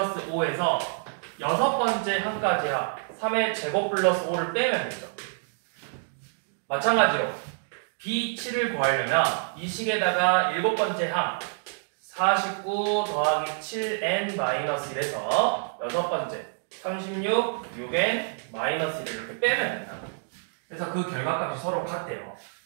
5에서 6번째 항까지 합 3의 제곱 플러스 5를 빼면 되죠. 마찬가지로 B7을 구하려면 이 식에다가 7번째 항 49 더하기 7n-1에서 6번째 36, 6n-1을 이렇게 빼면 된다. 그래서 그 결과값이 서로 같대요.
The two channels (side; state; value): left; silent; digital silence